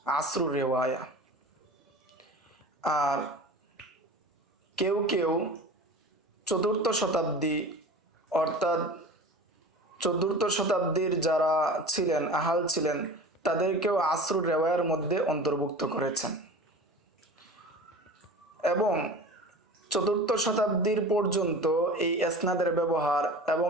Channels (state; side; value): normal; both; correlation 0.36